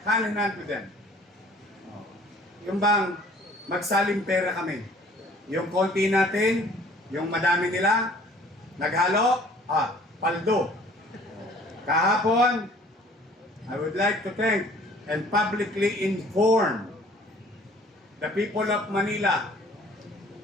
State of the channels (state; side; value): normal; both; correlation 0.53